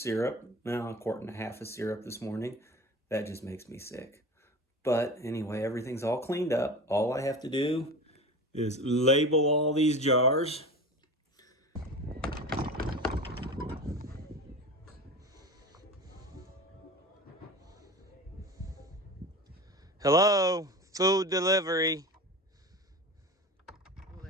now a quart and a half of syrup this morning. That just makes me sick. But anyway, everything's all cleaned up. All I have to do is label all these jars. Hello, food delivery. Will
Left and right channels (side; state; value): both; normal; correlation 0.31